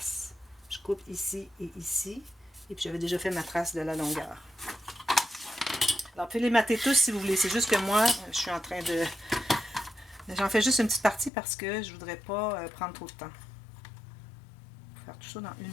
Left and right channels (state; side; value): drops out; right; at 11.3 s